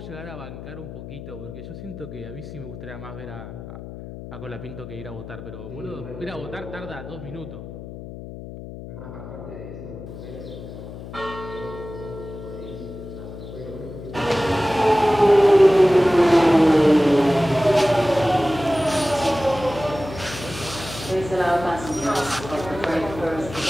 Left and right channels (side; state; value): left; noise; hum, 12 dB below the sound